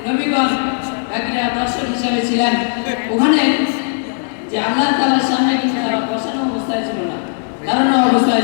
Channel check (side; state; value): right; silent; digital silence